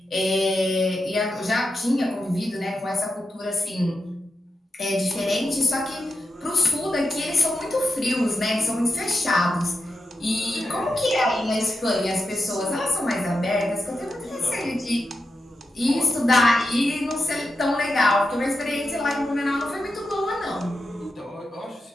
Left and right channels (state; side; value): normal; both; correlation 0.88